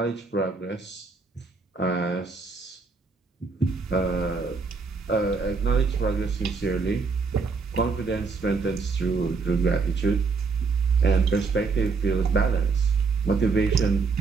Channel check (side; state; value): left; quieter; 4.6 dB